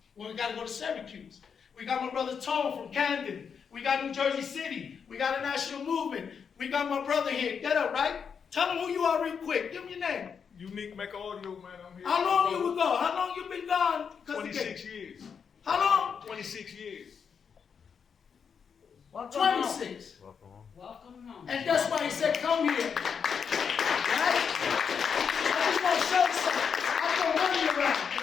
Well, we got to go to Syracuse. We got my brother Tone from Camden. We got New Jersey City. We got a national movement. We got my brother here. Get up, right? Tell him who you are real quick. Give him your name. Unique Mecca Audio, man. I'm here. How long you ago? How long you been gone? 26 years. How long? 26 years. Welcome home. 26. Welcome home. And that's why he said, come here. Right? I just want to show you something. I throw money around, and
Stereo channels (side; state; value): right; quieter; 6.6 dB